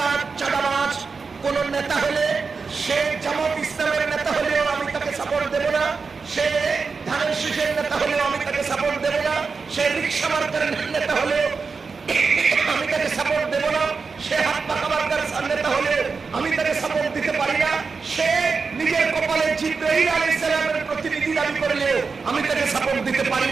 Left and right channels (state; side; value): quieter; left; 4.8 dB